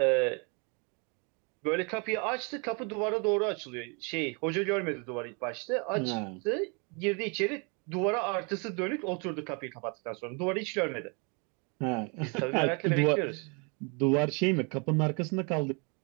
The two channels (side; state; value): left; quieter; 33.9 dB